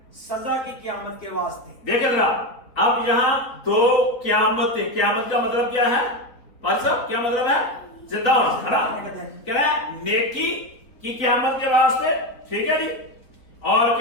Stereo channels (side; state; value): right; late; 3.7 ms